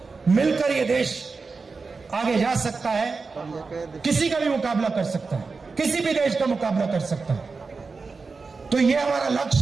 मिलकर ये देश आगे जा सकता है, किसी का भी मुकाबला कर सकता है, किसी भी देश का मुकाबला कर सकता है। तो ये हमारा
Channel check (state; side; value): quieter; left; 4.4 dB